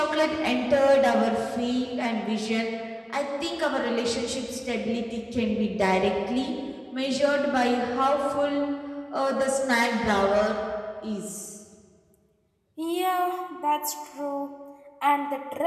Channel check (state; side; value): identical; both; correlation 1.00